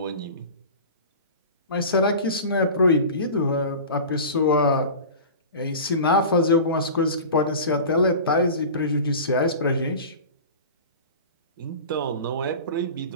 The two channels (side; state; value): both; inverted; correlation -0.34